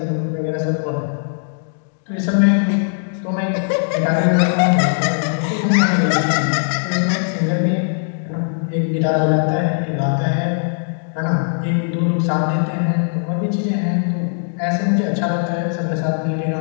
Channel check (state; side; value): silent; right; digital silence